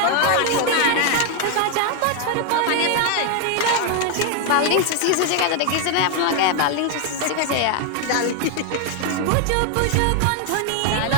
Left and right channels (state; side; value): different; both; correlation 0.00